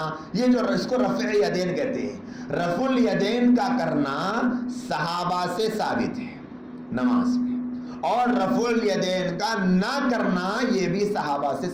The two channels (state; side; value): identical; both; correlation 1.00